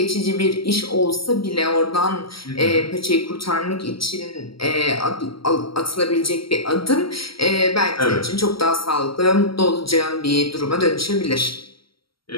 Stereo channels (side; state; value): right; late; 0.75 ms